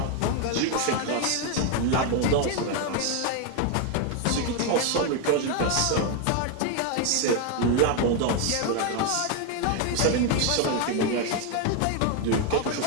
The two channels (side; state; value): both; different; correlation 0.01